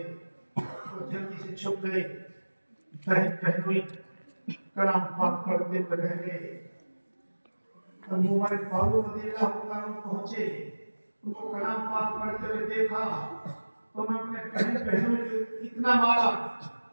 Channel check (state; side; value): inverted; both; correlation -1.00